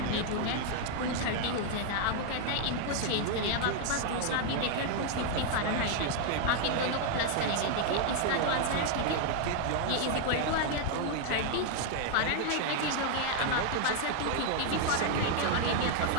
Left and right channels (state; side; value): different; both; correlation 0.00